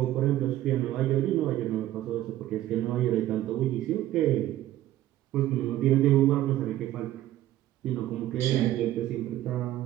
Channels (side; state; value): left; quieter; 14.1 dB